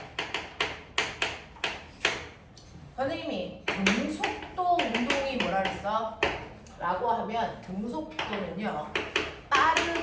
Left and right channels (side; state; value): both; identical; correlation 1.00